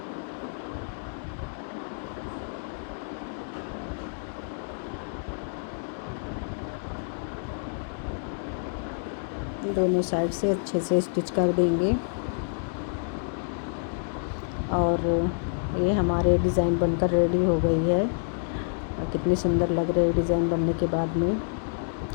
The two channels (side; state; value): right; silent; digital silence